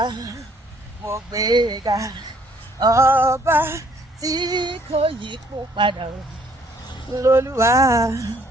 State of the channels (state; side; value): normal; both; correlation 0.63